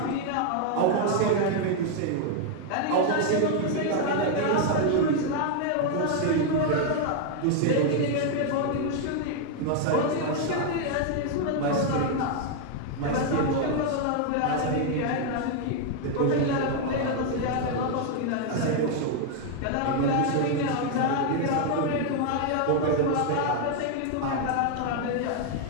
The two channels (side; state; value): both; different; correlation 0.00